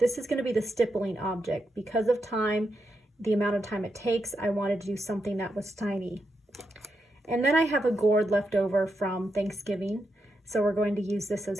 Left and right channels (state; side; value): normal; both; correlation 0.85